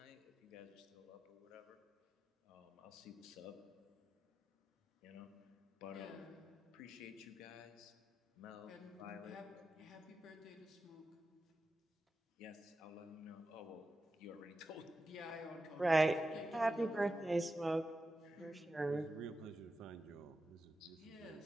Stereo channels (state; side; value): normal; both; correlation 0.91